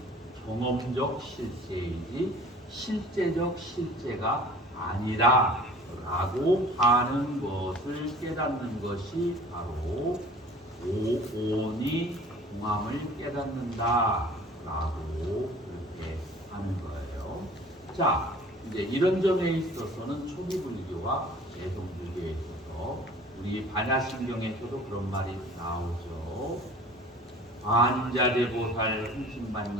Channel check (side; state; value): both; normal; correlation 0.47